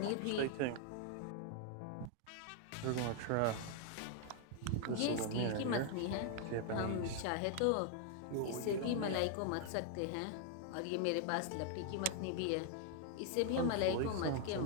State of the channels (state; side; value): different; both; correlation 0.00